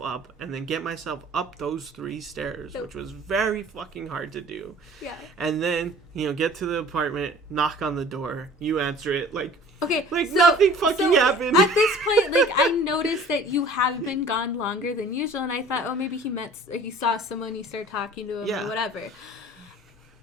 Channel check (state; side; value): normal; both; correlation 0.47